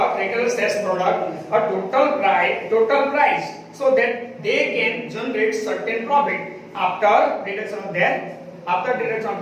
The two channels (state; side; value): identical; both; correlation 1.00